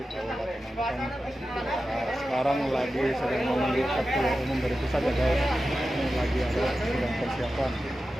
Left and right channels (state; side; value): normal; both; correlation 0.92